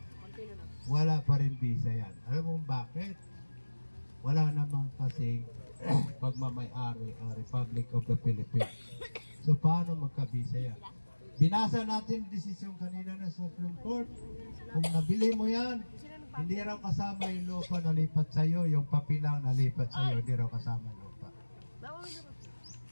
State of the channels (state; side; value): inverted; both; correlation -1.00